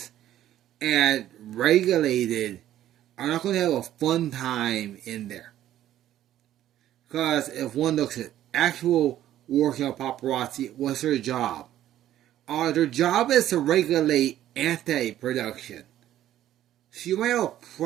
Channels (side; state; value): left; quieter; 12.5 dB